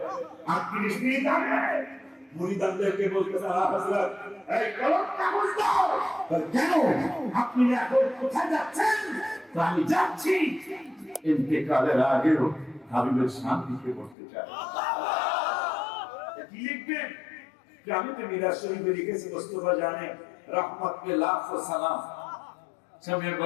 38 মিনিট আগে মুরিদানদেরকে বলতেছে, হযরত এই কলম কাগজ দাও। কেন আপনি এখন কোথায় যাচ্ছেন? আমি যাচ্ছি ইন্তেকালের আগেও হাবিবের শান্তিকে করতে চাই। কি লিখবেন? আমি তো মিরাজ শরীফে লিখেছি, মোস্তফা জানে রহমত पे लाखों सलाम, समय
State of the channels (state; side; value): drops out; right; at 14.2 s